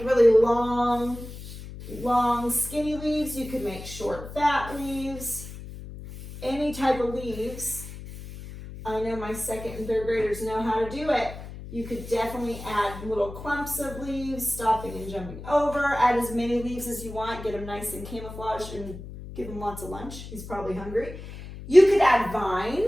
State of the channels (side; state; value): left; noise; hum, 12 dB below the sound